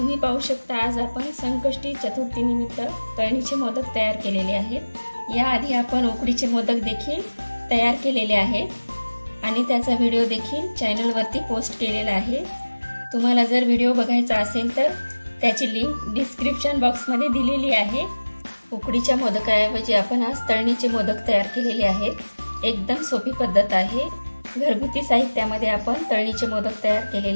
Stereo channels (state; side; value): inverted; both; correlation -1.00